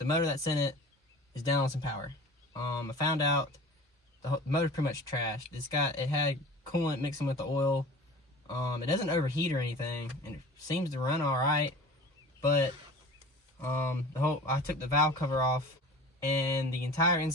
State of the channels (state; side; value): normal; both; correlation 0.40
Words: motor that's in it is down on some power. I found out the motor's pretty much trashed. It had coolant mixing with the oil. It doesn't overheat or anything, and it seems to run all right, but I took the valve cover off, and the entire